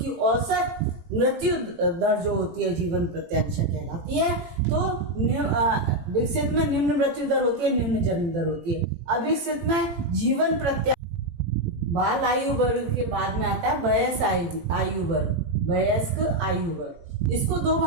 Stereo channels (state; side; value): late; left; 18 ms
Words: औसत मृत्यु दर जो होती है जीवन प्रत्याशा कहलाती है। तो विकसित में निम्न मृत्यु दर होती है, निम्न जन्म दर होती है। अविकसित में जीवन प्रत्याशा। बाल आयु वर्ग के बाद में आता है वयस्क आयु वर्ग, वयस्क आयु वर्ग। इसको 2